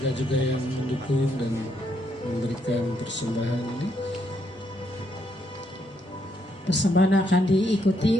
juga yang mendukung dan memberikan persembahan ini. Persembahan akan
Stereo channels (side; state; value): both; normal; correlation 0.75